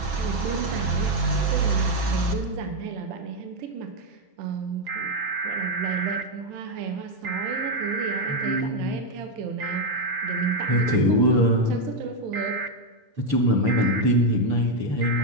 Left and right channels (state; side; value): late; left; 6.9 ms